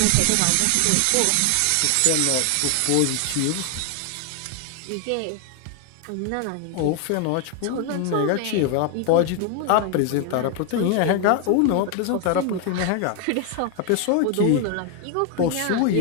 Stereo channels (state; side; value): different; both; correlation 0.01